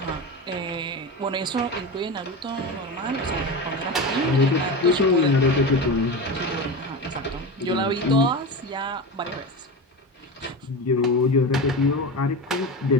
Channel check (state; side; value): normal; both; correlation 0.23